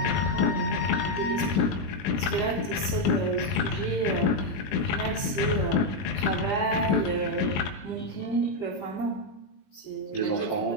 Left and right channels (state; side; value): late; right; 20 ms